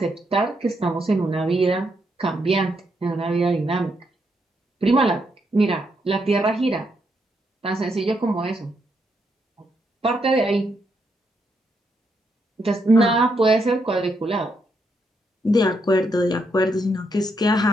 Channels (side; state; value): both; normal; correlation 0.78